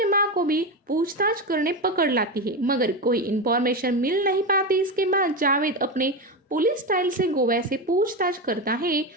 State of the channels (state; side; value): normal; both; correlation 0.16